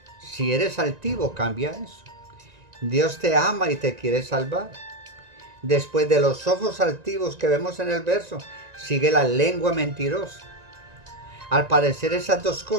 Si eres altivo, cambia eso. Dios te ama y te quiere salvar. Después de los ojos altivos que vemos en el verso, sigue la lengua mentirosa. Al parecer, esas dos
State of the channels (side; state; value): left; late; 1.9 ms